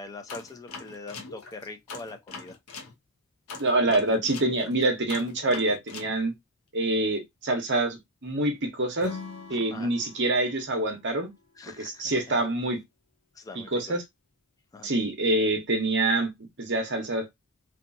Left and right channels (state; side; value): normal; both; correlation -0.07